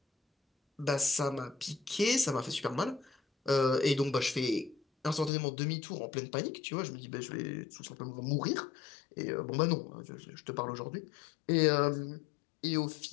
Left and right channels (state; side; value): drops out; right; at 5.3 s